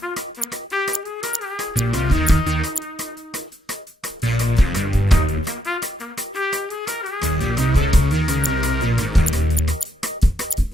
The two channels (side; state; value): both; normal; correlation 0.77